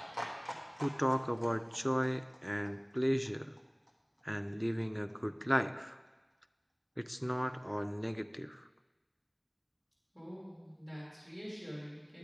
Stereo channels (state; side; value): identical; both; correlation 1.00